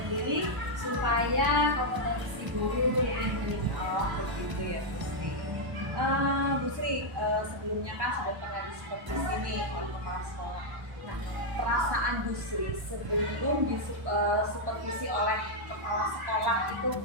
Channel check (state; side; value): late; left; 1.0 ms